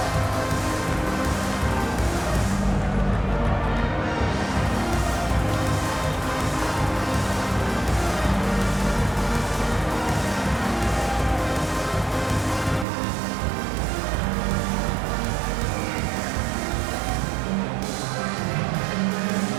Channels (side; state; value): left; drops out; at 12.9 s